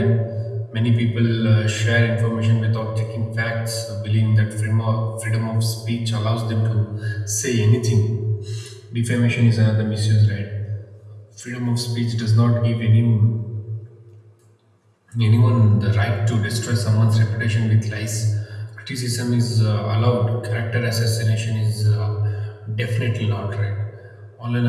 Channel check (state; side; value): identical; both; correlation 1.00